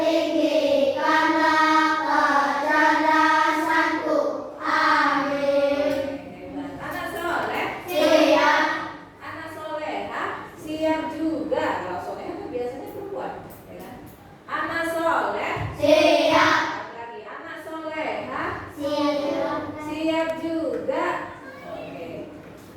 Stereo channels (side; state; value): both; identical; correlation 1.00